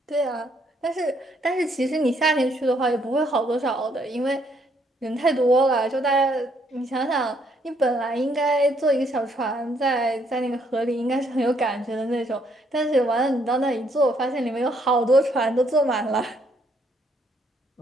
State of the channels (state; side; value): normal; both; correlation 0.70